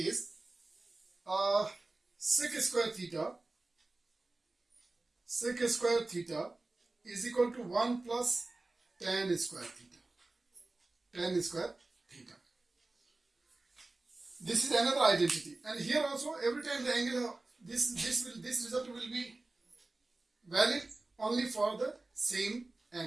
sec square theta is equal to 1 plus tan square theta. Tan square theta. This is another identity, and here also every time the angle this result will be valid only for the same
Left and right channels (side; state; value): left; quieter; 3.1 dB